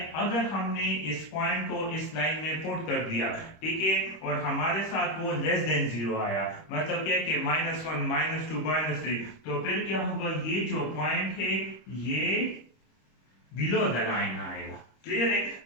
अगर हमने इस पॉइंट को इस लाइन में पुट कर दिया, ठीक है, और हमारे साथ वो लेस देन जीरो आया, मतलब क्या कि -1 -2 -3, तो फिर क्या होगा? ये जो पॉइंट है ये बिलो द लाइन आएगा। क्लियर है?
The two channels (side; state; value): right; late; 26 ms